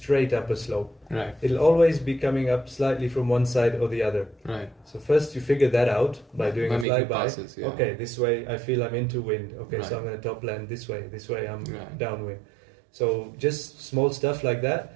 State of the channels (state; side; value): drops out; left; at 6.9 s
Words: up a slope. Right. It'll always be coming up slightly from one side or the other. Right. So first you figure that out by doing a flyby. Passes, yeah. Okay, this way I feel I'm into wind. Okay, Right. so I'm going to top land this way. This way I'm downwind. So just small stuff like